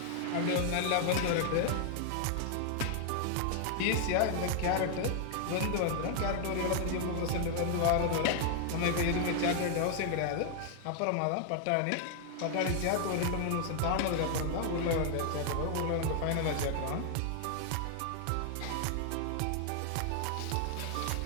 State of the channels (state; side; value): different; both; correlation 0.00